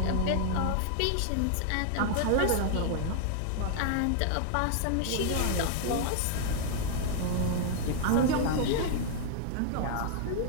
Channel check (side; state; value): both; different; correlation 0.00